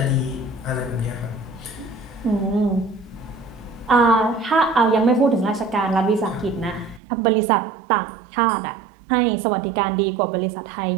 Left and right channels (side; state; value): left; drops out; at 7.0 s